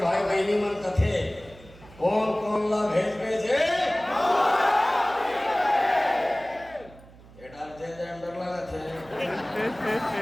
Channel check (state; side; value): noise; right; hum, 22 dB below the sound